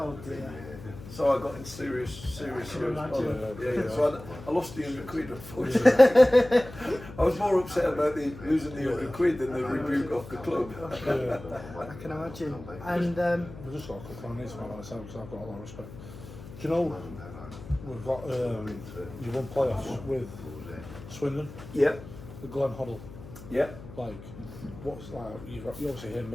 dear. So I got in serious trouble. Yeah. So I lost the £100, unfortunately. I was more upset about losing the £100 than the rebuke off the club. I can imagine. And I've just got a quick one on this one myself because I've got a lot of respect. Do you know we've got you won playoffs with Swindon, Yeah. the Glenn Hoddle. Yeah. Like, what's like you obviously hear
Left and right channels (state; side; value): noise; left; hum, 15 dB below the sound